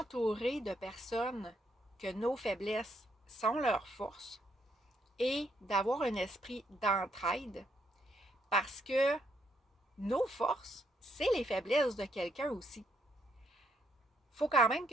de personnes que nos faiblesses sont leurs forces et d'avoir un esprit d'entraide parce que nos forces, c'est les faiblesses de quelqu'un aussi. Il faut quand même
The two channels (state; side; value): normal; both; correlation 0.74